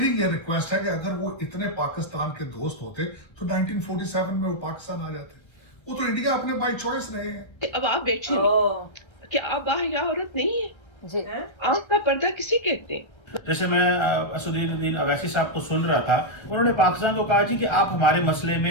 ये रिक्वेस्ट है कि अगर वो इतने पाकिस्तान के दोस्त होते तो 1947 में वो पाकिस्तान आ जाते। वो तो इंडिया अपने बाय चॉइस रहे हैं। अब आप बैठिए, क्या आप बाहया औरत नहीं है जी? आंख का पर्दा किसे कहते हैं? जैसे मैं असदुद्दीन अवैसी साहब को सुन रहा था, उन्होंने पाकिस्तान को कहा जी कि आप हमारे मसले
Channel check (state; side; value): late; right; 1.3 ms